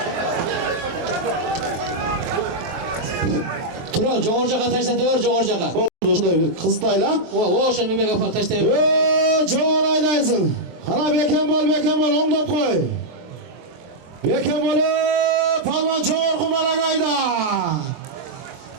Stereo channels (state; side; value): late; left; 23 ms